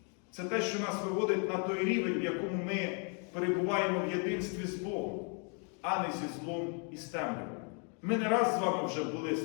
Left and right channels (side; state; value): right; quieter; 38.7 dB